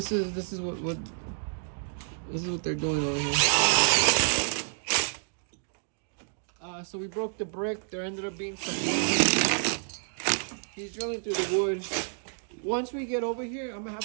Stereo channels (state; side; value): silent; left; digital silence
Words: is what they're doing over here. So we broke the brick. There ended up being some wood. He's drilling through the wood. Once we get over here, I'm gonna